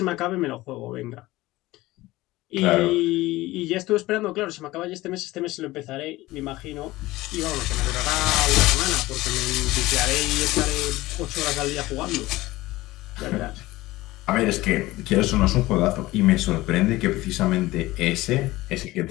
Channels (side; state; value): right; quieter; 18.5 dB